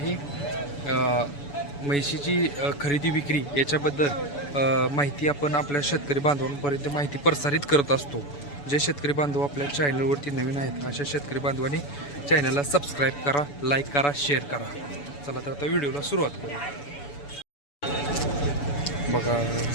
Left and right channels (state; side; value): late; right; 7.0 ms